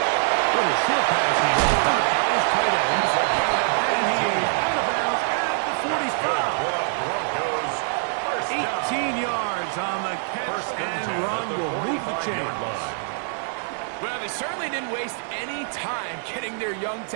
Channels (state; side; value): silent; left; 62 dB below the other